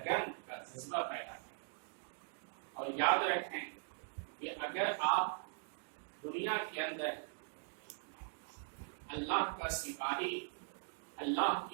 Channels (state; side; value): silent; left; digital silence